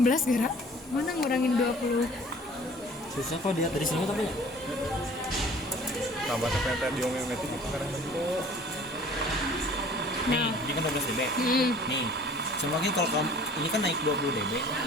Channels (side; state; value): both; normal; correlation 0.50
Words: Gara. Mana ngurangin 20? Susah kok dia dari sini tapi ya. Tambah teh diomeometik itu karena bentuk. Nih, ini kan 12 dB. Nih, semakin kalau kamu ini kan naik 20 dB.